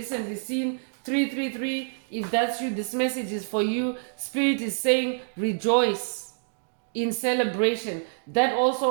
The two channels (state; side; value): silent; left; digital silence